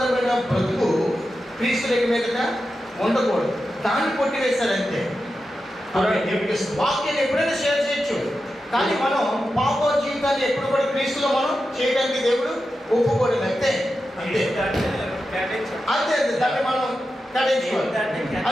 బ్రతుకు క్రీస్తులకు మీద ఉండకూడదు, దాన్ని కొట్టివేశారంతే। వాక్యాన్ని ఎప్పుడైనా షేర్ చేయొచ్చు, కానీ మనం పాప జీవితాన్ని ఎప్పుడు కూడా క్రీస్తులో మనం చేయడానికి దేవుడు ఒప్పుకోలేదు, అంతే అంతే అంతే దాన్ని మనం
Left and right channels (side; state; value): both; normal; correlation 0.90